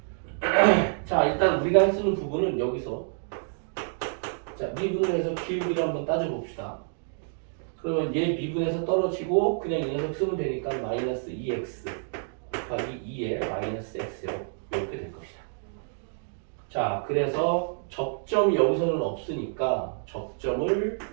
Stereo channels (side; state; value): left; silent; digital silence